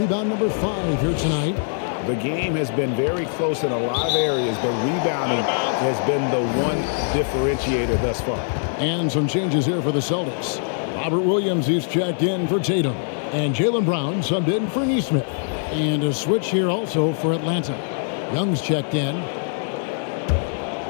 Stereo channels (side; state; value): right; silent; digital silence